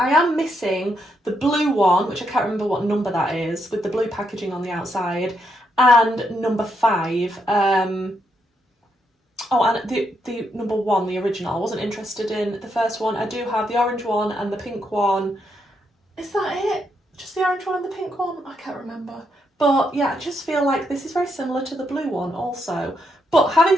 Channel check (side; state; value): both; normal; correlation 0.79